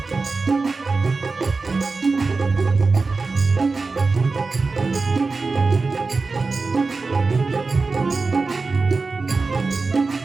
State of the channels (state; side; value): quieter; left; 4.0 dB